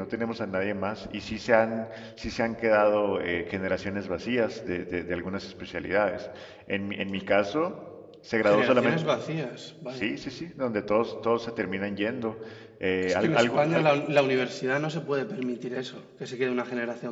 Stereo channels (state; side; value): identical; both; correlation 1.00